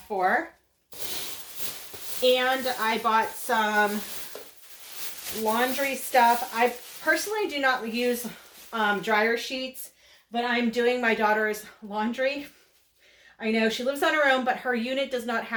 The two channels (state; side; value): identical; both; correlation 1.00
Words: for. And I bought some laundry stuff. I personally do not use dryer sheets, but I'm doing my daughter's laundry. I know she lives on her own, but her unit does not